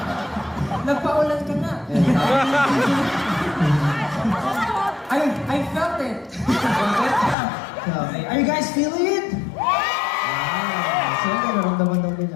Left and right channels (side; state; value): right; drops out; at 7.4 s